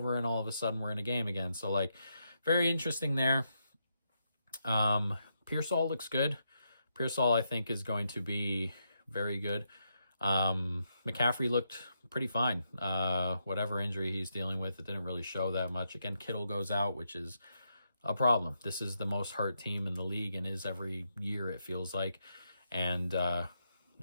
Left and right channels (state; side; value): inverted; both; correlation -0.81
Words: and all of a sudden we're in a game again. So like, very interesting there. Pearsall looks good. Pearsall, I think, is going to be very good. McCaffrey looked pretty fine. Whatever injury he's dealing with, it didn't really show that much. Again, Kittle goes out, which is a problem. This is the most hurt team in the league and is every year, it feels like. And